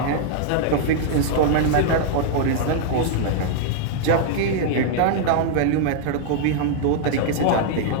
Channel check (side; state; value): both; different; correlation -0.01